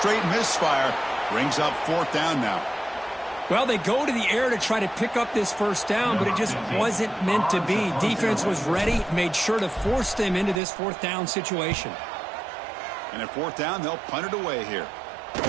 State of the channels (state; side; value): drops out; left; at 10.6 s